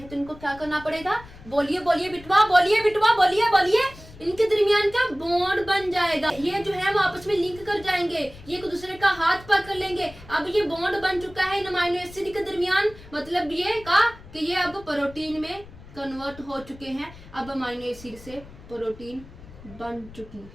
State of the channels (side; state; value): left; noise; rumble, 19 dB below the sound